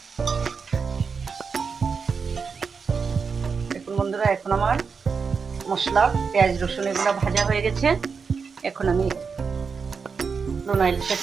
দেখুন বন্ধুরা, এখন আমার মশলা পেঁয়াজ রসুন এগুলো ভাজা হয়ে গেছে। এখন আমি লোনা ইলিশের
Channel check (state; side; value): quieter; left; 5.5 dB